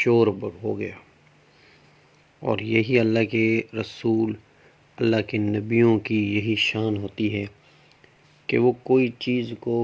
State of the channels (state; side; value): identical; both; correlation 1.00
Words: ہو گیا، اور یہی اللہ کے رسول، اللہ کے نبیوں کی یہی شان ہوتی ہے کہ وہ کوئی چیز کو